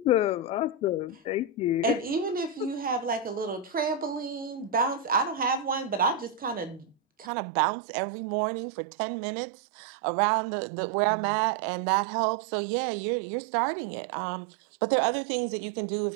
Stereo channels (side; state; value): left; drops out; at 7.3 s